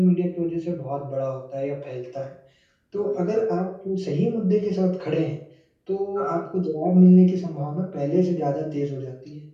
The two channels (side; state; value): both; identical; correlation 1.00